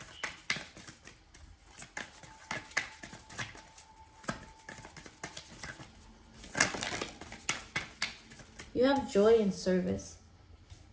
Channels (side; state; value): both; identical; correlation 1.00